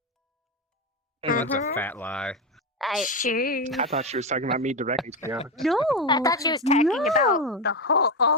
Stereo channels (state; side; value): normal; both; correlation 0.12